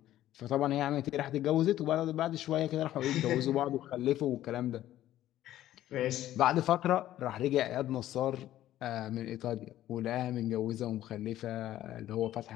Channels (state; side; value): quieter; right; 13.3 dB